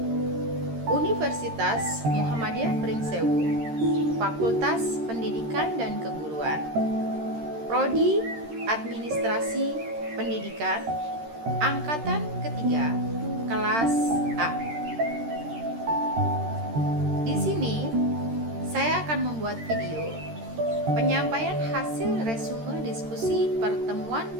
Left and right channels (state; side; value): late; left; 13 ms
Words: Universitas Muhammadiyah Pringsewu, Fakultas Pendidikan dan Keguruan, Prodi Administrasi Pendidikan, Angkatan ketiga, kelas A. Di sini saya akan membuat video penyampaian hasil resume diskusi pertemuan